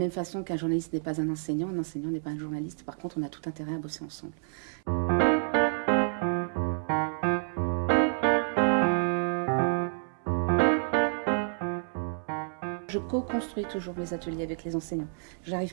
façon qu'un journaliste n'est pas un enseignant n'est pas un journaliste. Par contre, on a tout intérêt à bosser ensemble. Je co-construis toujours mes ateliers avec les enseignants. Je n'arrive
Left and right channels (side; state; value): left; silent; 58 dB below the other